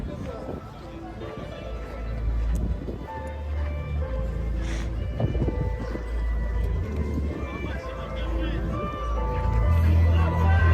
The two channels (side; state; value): both; identical; correlation 1.00